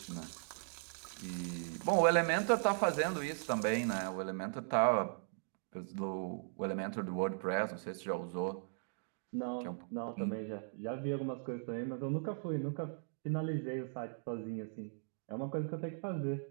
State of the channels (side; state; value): left; silent; digital silence